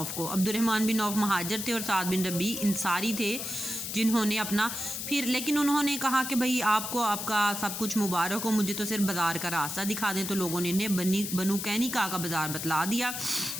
کو۔ عبد الرحمن بن عوف مہاجر تھے اور سعد بن ربیع انصاری تھے جنہوں نے اپنا لیکن انہوں نے کہا کہ بھئی آپ کو آپ کا سب کچھ مبارک ہو، مجھے تو صرف بازار کا راستہ دکھا دیں۔ تو لوگوں نے انہیں بنو قینقاع کا بازار بتلا دیا۔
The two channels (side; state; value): left; noise; hiss, 5 dB below the sound